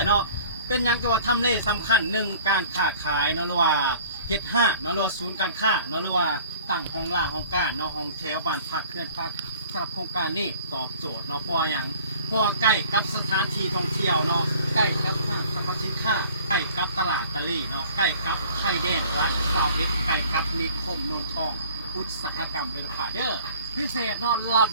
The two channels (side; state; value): both; inverted; correlation -0.50